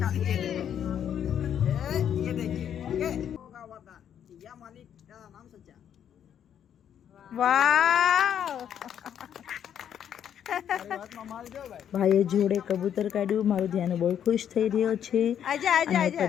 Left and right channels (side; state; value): right; quieter; 9.3 dB